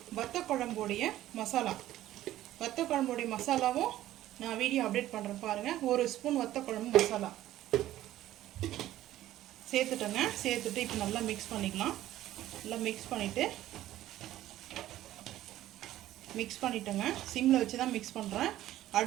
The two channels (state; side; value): quieter; left; 14.0 dB